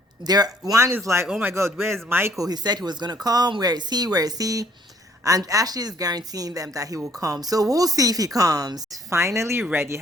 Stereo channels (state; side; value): normal; both; correlation 0.61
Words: is like, oh my God, where's Michael? He said he was going to come. Where is he? Where is he? And Ashley is guaranteeing them that he will come. So we'll see if he comes. Finally ready.